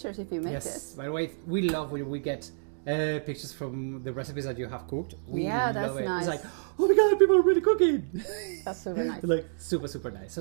if you make it. Yes, by the way, we love when we get pictures from the recipes that you have cooked. We that's love it. nice. It's like, oh my god, people are really cooking. That's super nice. Like super nice.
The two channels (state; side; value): silent; left; digital silence